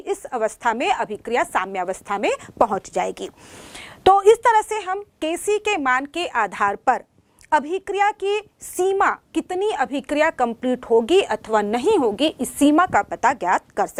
अवस्था में अभिक्रिया साम्यावस्था में पहुंच जाएगी। तो इस तरह से हम Kc के मान के आधार पर अभिक्रिया की सीमा, कितनी अभिक्रिया कंप्लीट होगी अथवा नहीं होगी, इस सीमा का पता ज्ञात कर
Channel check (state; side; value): identical; both; correlation 1.00